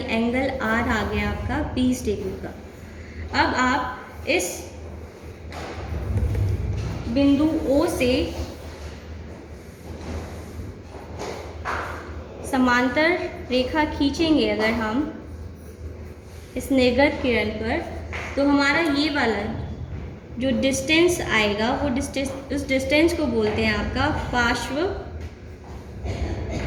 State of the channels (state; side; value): identical; both; correlation 1.00